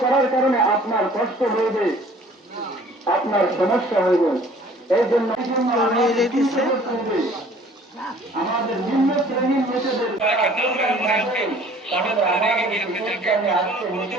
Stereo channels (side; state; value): both; normal; correlation 0.52